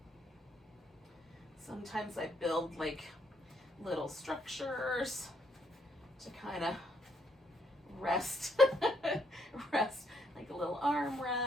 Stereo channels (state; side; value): normal; both; correlation 0.72